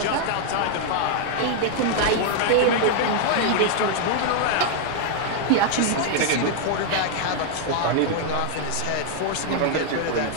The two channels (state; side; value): different; both; correlation 0.00